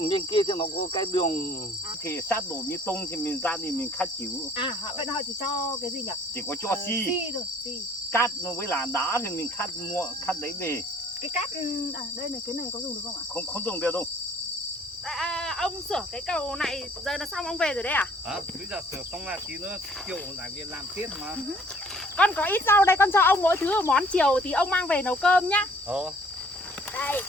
bên kia thì nó có cái đường thì sát đổ bê tông thì mình ra thì mình khát chịu. À vậy họ chỉ cho cái gì nhỉ? Chỉ có cho xi thôi, xi. Cát với là đá thì mình khát đấy về. Cái cát đây này, cái này có dùng được không ạ? Không dùng được đâu. Ông sửa cái cầu này giờ là xong ông về rồi đấy à? Bây giờ sửa xong là tí nữa chiều lại về làm tiếp mà. Con có ít rau đây, con cho ông mỗi thứ một món, chiều thì ông mang về nấu cơm nhá. Đây.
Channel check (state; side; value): normal; both; correlation 0.56